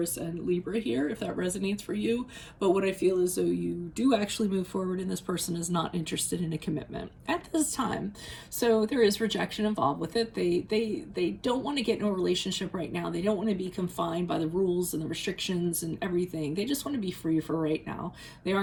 and Libra here, if that resonates for you. But what I feel is though you do actually move forward, and this person is not interested in a commitment at this time. So there is rejection involved with it. They don't want to get in a relationship right now. They don't want to be confined by the rules and the restrictions and everything. They just want to be free for right now. They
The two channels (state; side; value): identical; both; correlation 1.00